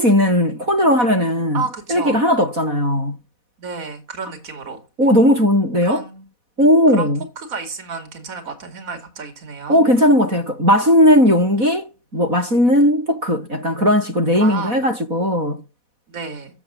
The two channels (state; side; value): late; left; 4.1 ms